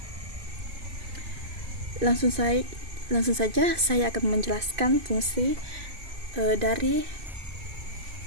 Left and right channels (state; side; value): late; left; 2.5 ms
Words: Langsung saja saya akan menjelaskan fungsi dari